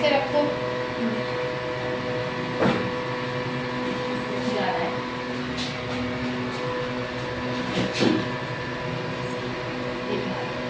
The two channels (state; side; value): identical; both; correlation 1.00